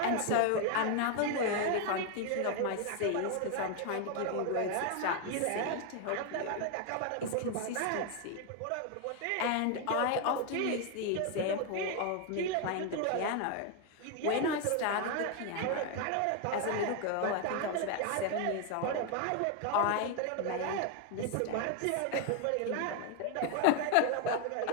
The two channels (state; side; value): different; both; correlation 0.01